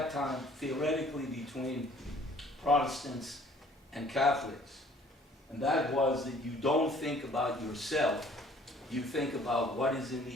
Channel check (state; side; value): normal; both; correlation 0.56